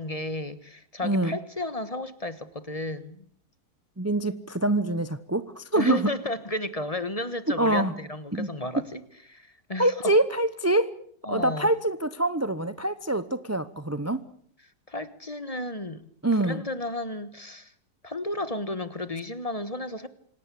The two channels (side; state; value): both; normal; correlation -0.11